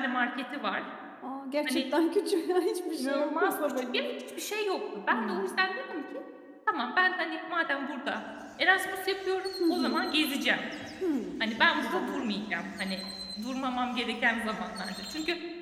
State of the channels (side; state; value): both; identical; correlation 1.00